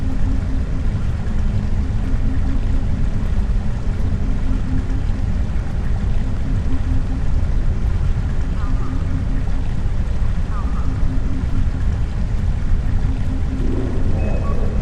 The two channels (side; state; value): both; identical; correlation 1.00